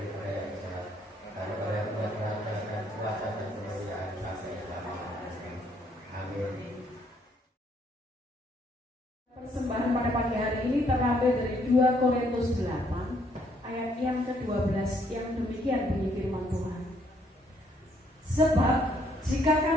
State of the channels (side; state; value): both; normal; correlation 0.68